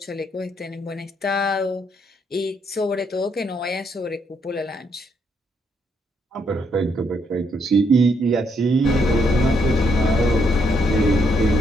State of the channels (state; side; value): normal; both; correlation 0.74